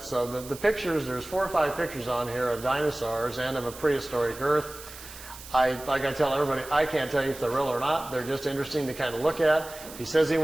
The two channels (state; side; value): noise; right; hiss, 15 dB below the sound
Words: So the pictures, there's 4 or 5 pictures on here of dinosaurs and of a prehistoric Earth. Like I tell everybody, I can't tell you if they're real or not. They're just interesting to kind of look at. He says he